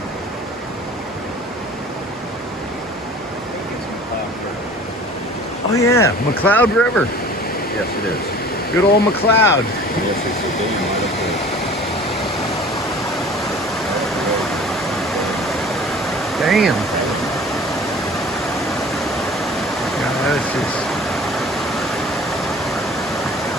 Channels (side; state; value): both; normal; correlation 0.45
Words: Oh yeah, McCloud River. Yes, it is. Good old McCloud. Yes, it's a dam right up there. Damn. Yeah, that's just...